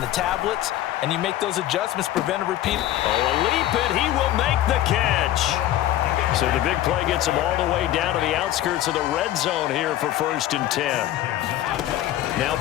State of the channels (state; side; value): quieter; right; 13.5 dB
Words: the tablets, and you make those adjustments, prevent a repeat. Oh, a leap, and he will make the catch. So the big play gets him all the way down to the outskirts of the red zone here for 1st and 10. Now